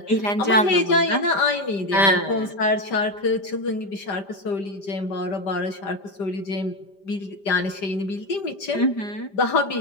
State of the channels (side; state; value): right; late; 5.0 ms